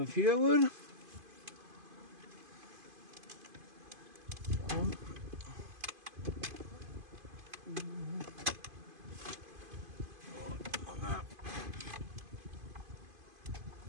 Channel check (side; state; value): left; late; 2.5 ms